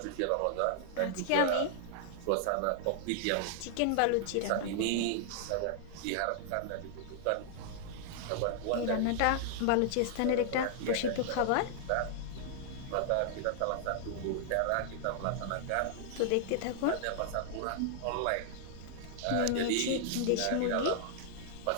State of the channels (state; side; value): different; both; correlation -0.01